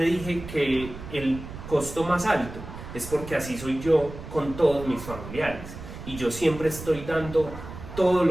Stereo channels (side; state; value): right; noise; rumble, 12 dB below the sound